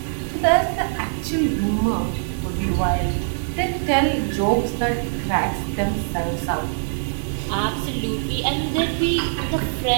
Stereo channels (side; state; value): left; silent; digital silence